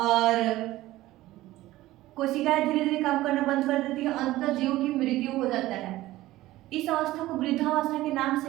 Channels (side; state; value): left; quieter; 16.7 dB